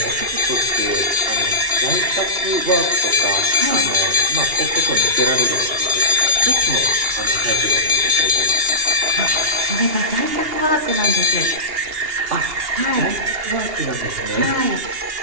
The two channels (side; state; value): left; late; 2.8 ms